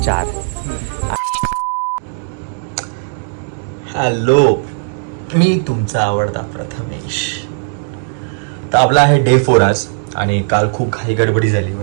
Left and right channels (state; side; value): silent; left; 65 dB below the other